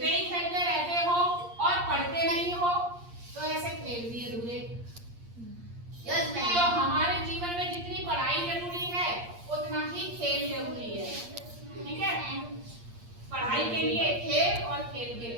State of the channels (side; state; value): left; late; 8.6 ms